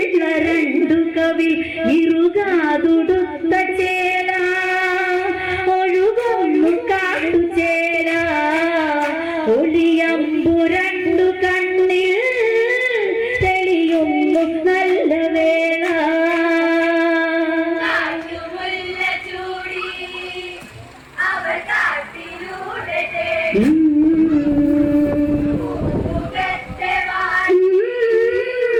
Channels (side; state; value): both; identical; correlation 1.00